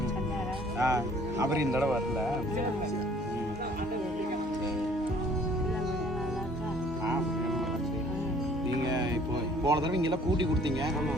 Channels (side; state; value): both; normal; correlation 0.56